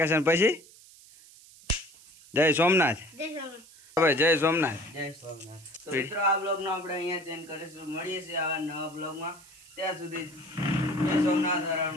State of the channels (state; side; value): noise; right; hiss, 23 dB below the sound